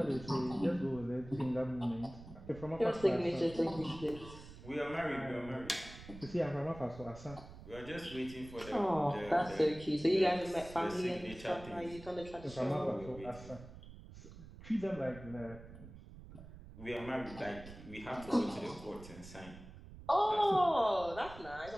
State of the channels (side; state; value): right; noise; rumble, 16 dB below the sound